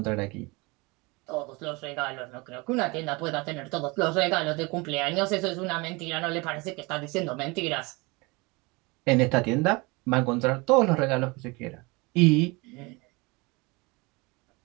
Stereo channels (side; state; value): left; quieter; 26.0 dB